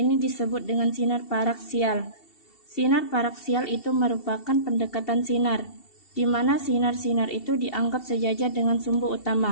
disebut dengan sinar paraksial. Sinar paraksial itu merupakan pendekatan sinar, di mana sinar-sinar itu dianggap sejajar dengan sumbu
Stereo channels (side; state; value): right; late; 2.7 ms